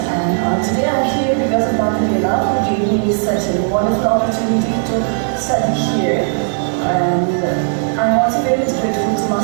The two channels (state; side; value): silent; left; 57 dB below the other